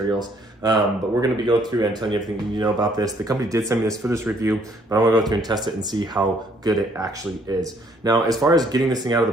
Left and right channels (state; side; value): normal; both; correlation 0.65